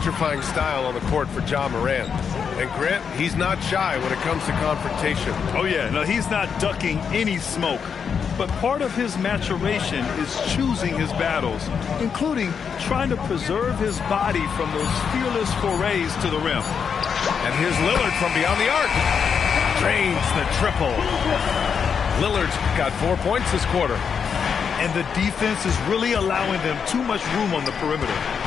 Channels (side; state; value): right; quieter; 6.7 dB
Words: style on the court for Ja Morant. And Grant, he's not shy when it comes to confrontation. Oh yeah, no, he's not ducking any smoke. But part of his maturation is choosing his battles, including trying to preserve his body from those fearless forays to the rim. And here's Lillard from beyond the arc. Drains the triple. Lillard's got 4 points this quarter. And the defense is really allowing them too much room on the perimeter.